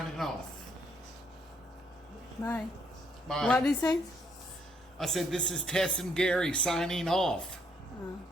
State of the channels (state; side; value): normal; both; correlation 0.71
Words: off. Bye. Bye. What did he say? I said this is Tess and Gary signing off.